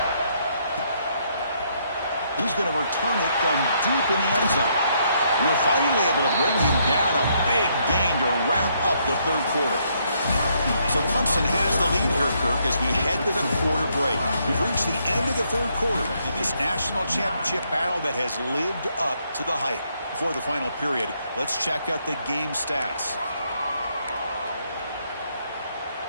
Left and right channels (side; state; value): both; inverted; correlation -0.73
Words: He's going to return it from deep in the end zone. And they're finally able to bring him down. A big gain to wrap up the third quarter. So Clemson has the lead here, Kirk, as we head to the quarter break. We've reached the end of the third quarter in this national championship battle that has lived up to the hype. Before the final period, let's check out the game stats.